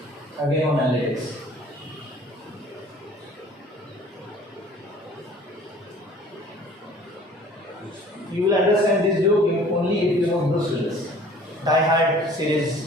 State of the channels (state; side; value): normal; both; correlation 0.50